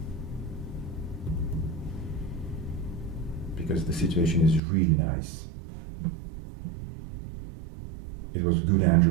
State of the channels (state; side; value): drops out; left; at 4.6 s